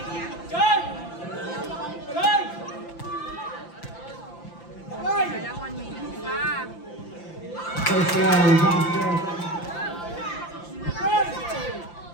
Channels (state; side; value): late; right; 5.8 ms